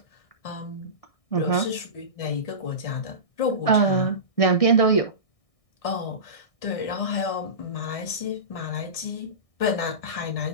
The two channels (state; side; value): late; right; 1.6 ms